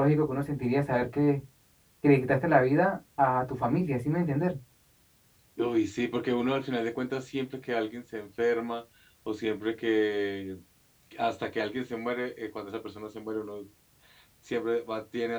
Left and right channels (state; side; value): identical; both; correlation 1.00